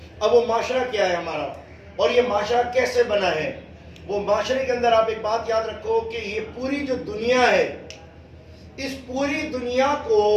अब वो माशरा क्या है हमारा और ये माशरा कैसे बना है, वो माशरे के अंदर आप एक बात याद रखो कि ये पूरी जो दुनिया है, इस पूरी दुनिया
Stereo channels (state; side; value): identical; both; correlation 1.00